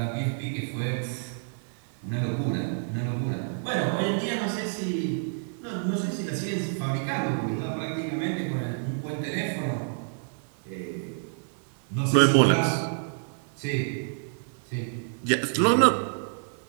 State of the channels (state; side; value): silent; left; digital silence